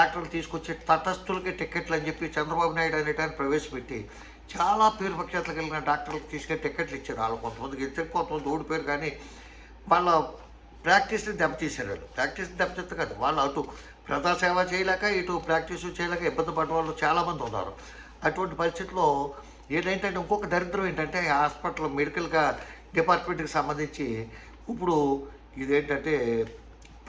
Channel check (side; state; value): both; identical; correlation 1.00